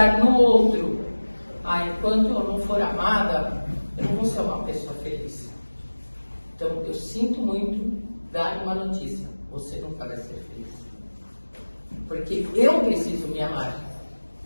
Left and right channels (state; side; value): inverted; both; correlation -1.00